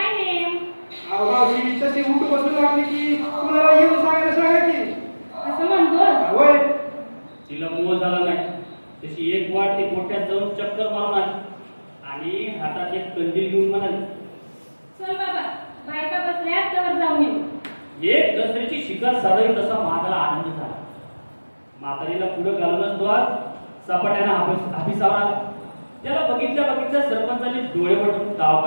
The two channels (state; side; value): inverted; both; correlation -1.00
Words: नेम. मावशी तशी उठ बसून लागली की कुणाला येऊन सांगा की असं म्हणतोस. होय. तिला मोह झाला नाही. तशी एक वाट ती मोठ्यात जाऊन चक्कर मारून आली आणि हातात एक कंदील घेऊन म्हणाली चल बाबा बायका बसल्यात तर जाऊन येऊ. एक दसऱ्याची शिकार साधावी तसा महादाला आनंद झाला. म्हातारीला पुढे घालूनच तो आज सपाट्यानं हापिसावर आला. त्याला बघितल्या सरपंचाने डोळे वटून ताव